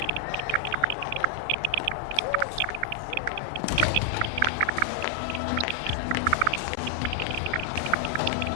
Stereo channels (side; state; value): both; different; correlation 0.00